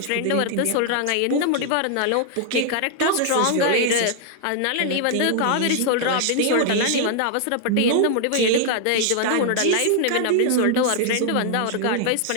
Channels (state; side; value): different; both; correlation 0.00